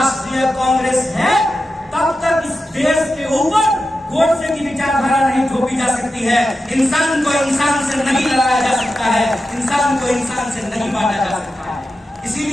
कांग्रेस है तब तक इस देश के ऊपर गोडसे की विचारधारा नहीं थोपी जा सकती है। इंसान को इंसान से नहीं लड़ाया जा सकता है, इंसान को इंसान से नहीं बांटा जा सकता है।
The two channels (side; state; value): both; normal; correlation 0.91